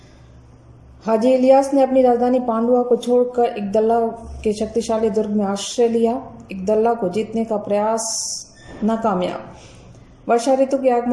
हाजी इलियास ने अपनी राजधानी पांडुआ को छोड़कर इकदल्ला के शक्तिशाली दुर्ग में आश्रय लिया। इकदल्ला को जीतने का प्रयास नाकामयाब। वर्षा ऋतु के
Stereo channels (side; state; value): both; identical; correlation 1.00